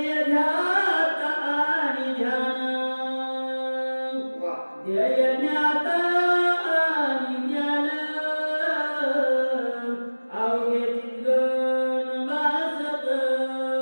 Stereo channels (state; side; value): inverted; both; correlation -1.00